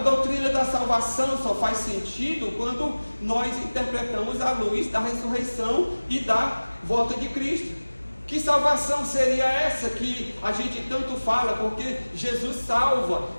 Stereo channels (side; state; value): both; inverted; correlation -1.00